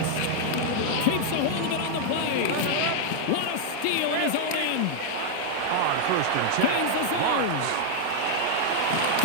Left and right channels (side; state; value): both; different; correlation 0.00